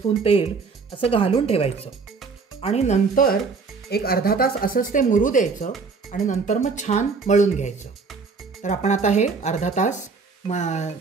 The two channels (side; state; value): left; quieter; 4.7 dB